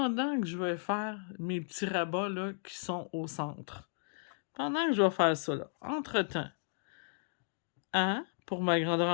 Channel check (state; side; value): silent; right; digital silence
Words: que je vais faire mes petits rabats là, qui sont au centre. Pendant que je vais faire ça, là, entre-temps, A, pour ma grandeur